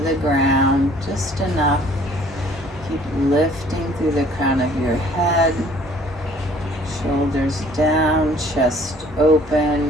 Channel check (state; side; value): normal; both; correlation 0.56